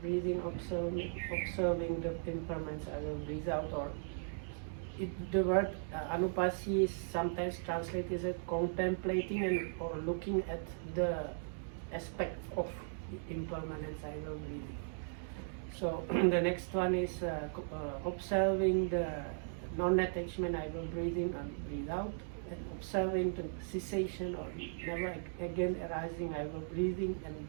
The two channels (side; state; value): left; silent; digital silence